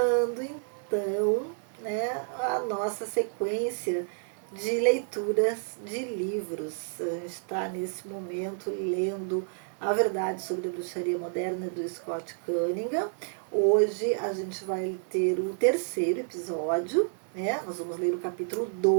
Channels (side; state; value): left; silent; digital silence